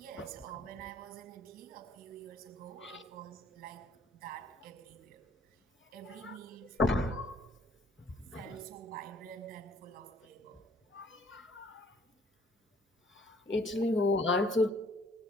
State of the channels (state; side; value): normal; both; correlation 0.59